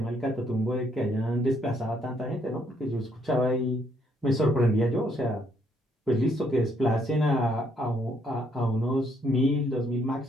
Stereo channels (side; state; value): both; normal; correlation 0.70